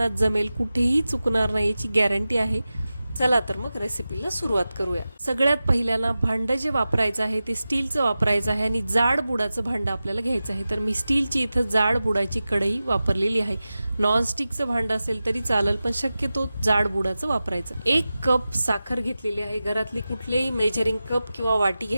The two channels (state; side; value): inverted; both; correlation -0.95